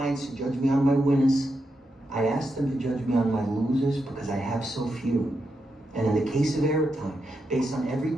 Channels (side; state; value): both; normal; correlation 0.85